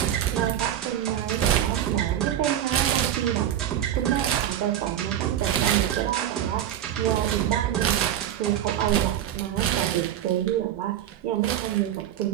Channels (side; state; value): left; quieter; 11.1 dB